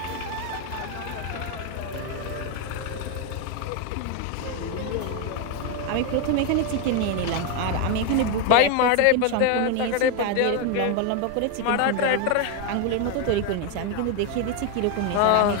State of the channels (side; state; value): both; different; correlation 0.01